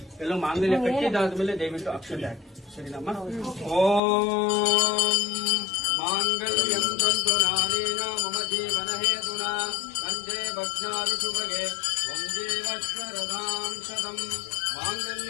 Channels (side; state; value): right; drops out; at 4.0 s